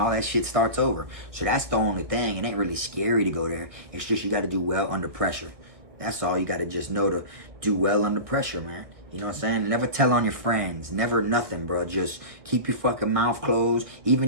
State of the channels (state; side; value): late; left; 1.6 ms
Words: that shit starts over. So that's the only thing. It ain't really scary to go there. It's just you got to do well under pressure. That's all. You got to just know to do well under pressure, man. You know what I'm saying? Never tell on your friends. Never nothing, bro. Just keep your fucking mouth closed,